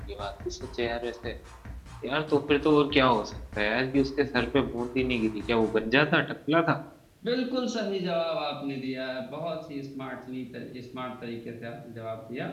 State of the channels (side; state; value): both; identical; correlation 1.00